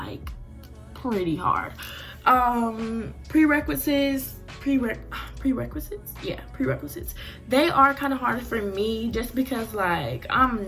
pretty hard. Prerequisites, they are kind of hard for me just because, like,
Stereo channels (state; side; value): identical; both; correlation 1.00